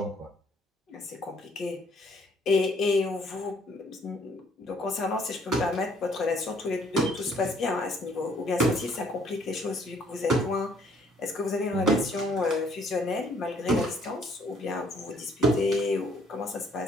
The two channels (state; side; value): normal; both; correlation 0.63